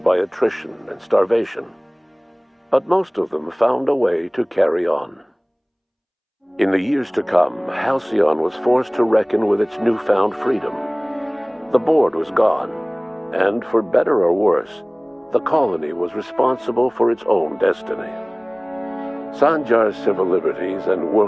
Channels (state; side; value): identical; both; correlation 1.00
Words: by attrition and starvation, but most of them found a way to carry on. In the years to come, Halcyon was forced to reckon with its newfound freedom. The board was gone, and for better or worse, the colony was responsible for its own destiny. Sanjar's civil liberties and